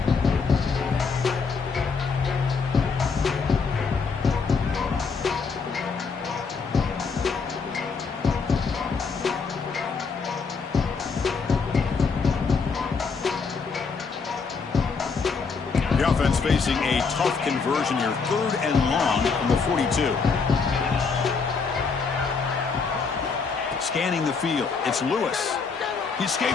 The offense facing a tough conversion here. 3rd and long from the 42. Scanning the field. It's Lewis. He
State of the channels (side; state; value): right; quieter; 5.0 dB